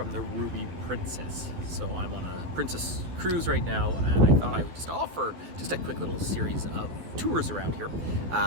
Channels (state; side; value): late; left; 12 ms